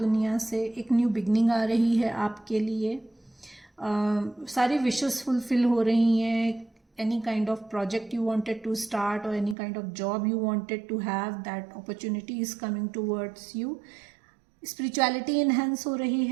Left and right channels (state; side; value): drops out; left; at 9.6 s